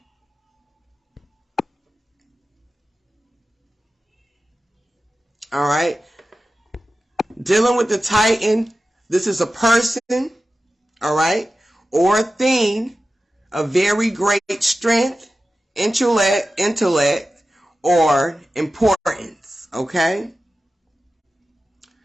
All right. Dealing with the Titan, this is a person, all right, or a thing of very great strength, intellect, or importance, okay?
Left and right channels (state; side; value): normal; both; correlation 0.94